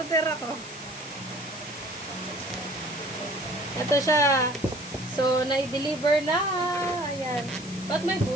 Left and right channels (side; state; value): left; noise; hiss, 16 dB below the sound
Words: ako. Ito siya. So, na-deliver na. Ayan. Ba't may